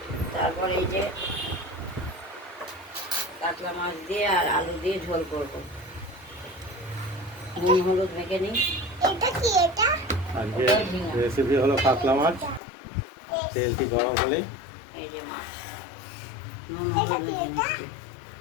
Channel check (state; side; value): drops out; right; at 12.6 s